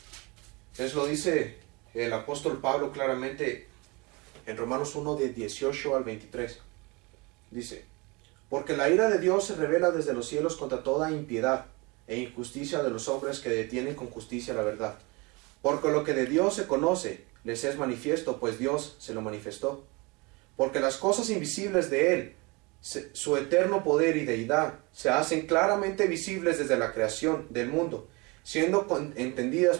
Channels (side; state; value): left; quieter; 26.9 dB